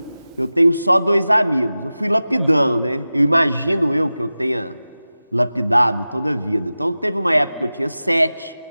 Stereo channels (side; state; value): both; inverted; correlation -0.96